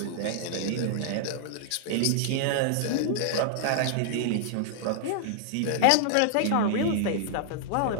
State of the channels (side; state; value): both; different; correlation -0.01